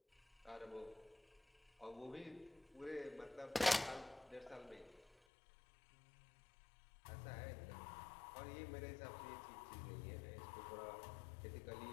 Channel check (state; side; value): drops out; right; at 5.2 s